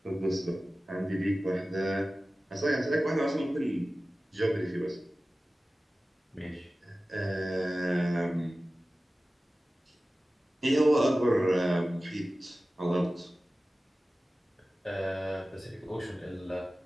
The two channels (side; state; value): both; normal; correlation 0.96